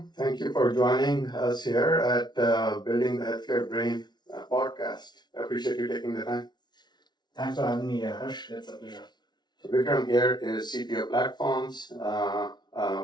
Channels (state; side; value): late; right; 0.20 ms